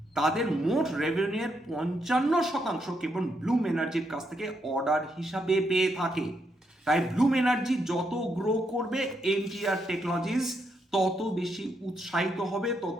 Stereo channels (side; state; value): both; normal; correlation 0.79